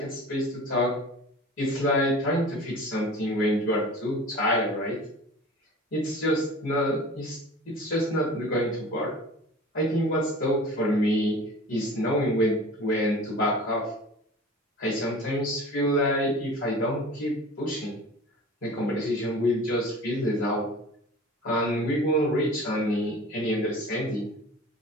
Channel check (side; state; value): both; normal; correlation 0.40